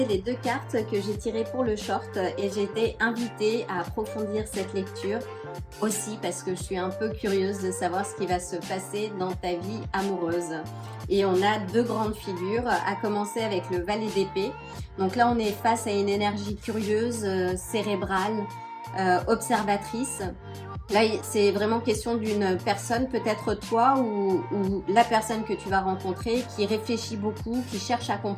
les deux cartes que j'ai tirées pour le short et j'ai été invitée à approfondir cette lecture aussi parce que je suis un peu curieuse de savoir ce qui va se passer dans ta vie amoureuse. Et on a deux grandes figures, à commencer avec le valet d'épée. Donc là, on est face à une énergie curieuse, cérébrale, observatrice. Là, c'est vraiment question d'une personne, peut-être toi ou la personne que tu vas rencontrer, qui réfléchit beaucoup, qui cherche à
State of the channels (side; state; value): both; identical; correlation 1.00